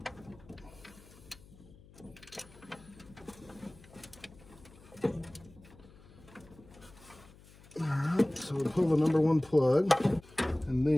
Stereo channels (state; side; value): noise; left; hum, 23 dB below the sound